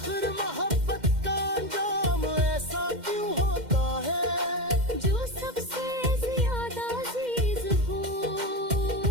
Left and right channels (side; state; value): left; late; 2.1 ms